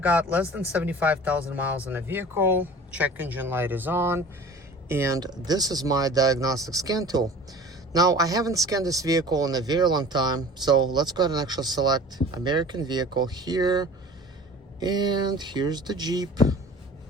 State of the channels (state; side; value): normal; both; correlation 0.43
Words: less than 75,000 miles in the vehicle. Check engine light is on, and this is my diagnostic scan tool. Now, I haven't scanned this vehicle in a very long time, so let's go ahead and actually select American vehicle here, and here's the Jeep.